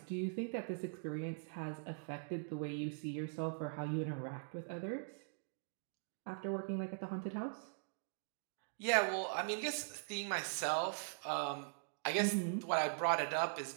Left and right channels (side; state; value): left; silent; digital silence